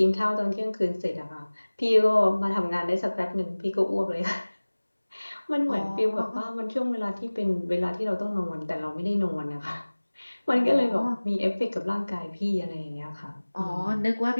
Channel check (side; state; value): both; inverted; correlation -1.00